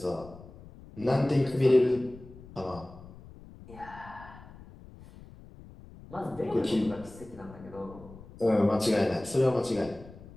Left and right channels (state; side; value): noise; left; rumble, 19 dB below the sound